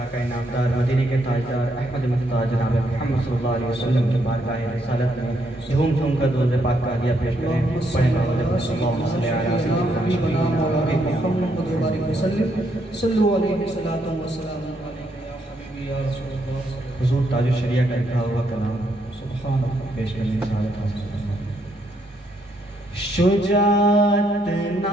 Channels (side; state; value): both; normal; correlation 0.75